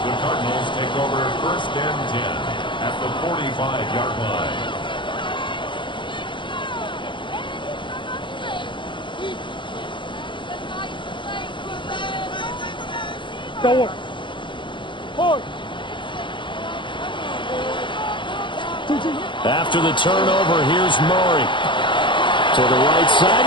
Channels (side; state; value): right; late; 0.23 ms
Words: The Cardinals take over 1st and 10 at the 45-yard line. After the turnover, here's Murray. To the right side